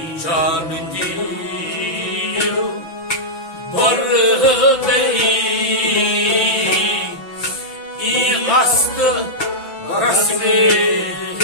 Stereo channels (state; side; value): late; right; 5.9 ms